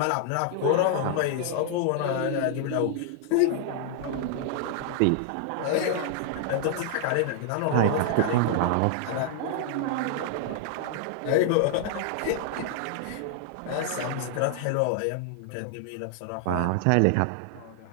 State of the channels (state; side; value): different; both; correlation 0.00